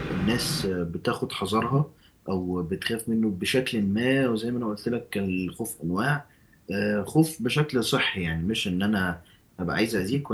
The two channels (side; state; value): both; identical; correlation 1.00